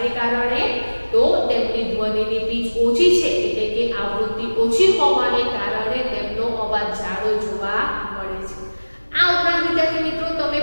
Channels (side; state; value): both; inverted; correlation -1.00